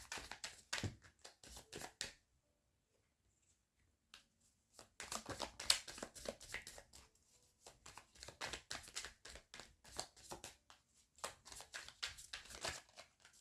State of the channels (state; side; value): identical; both; correlation 1.00